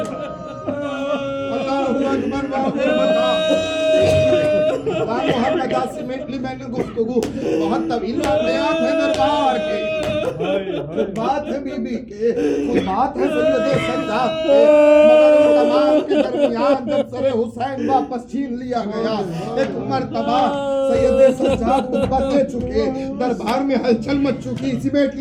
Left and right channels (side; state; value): both; identical; correlation 1.00